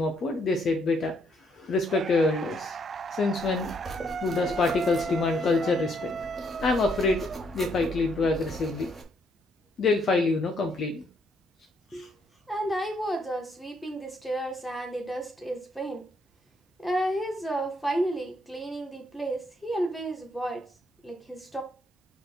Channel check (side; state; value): both; normal; correlation 0.72